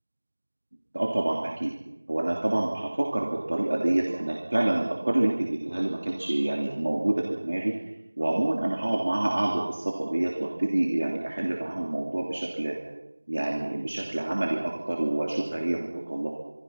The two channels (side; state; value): both; inverted; correlation -1.00